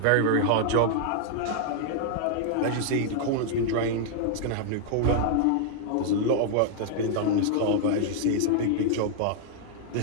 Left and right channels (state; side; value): different; both; correlation 0.00